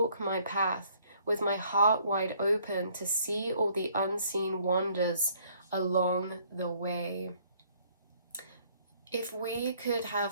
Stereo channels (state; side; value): inverted; both; correlation -0.63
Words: my path with my heart wide open to see all the unseen wonders along the way. If we could